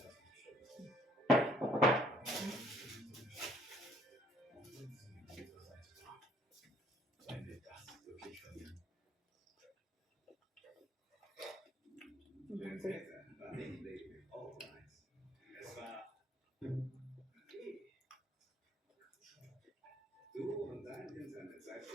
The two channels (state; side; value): normal; both; correlation 0.61